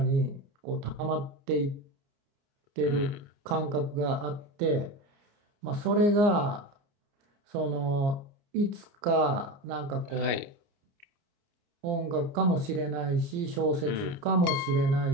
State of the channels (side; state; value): left; late; 29 ms